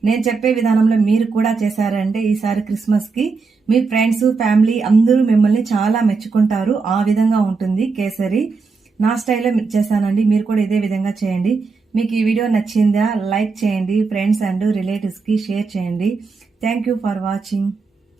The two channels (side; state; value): left; quieter; 4.5 dB